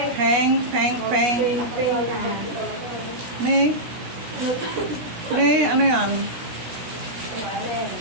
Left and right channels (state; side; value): late; left; 17 ms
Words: Peng. Peng. Peng. May ano yan?